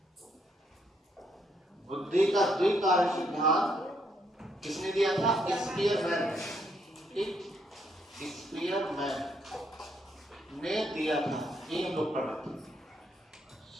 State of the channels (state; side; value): normal; both; correlation 0.73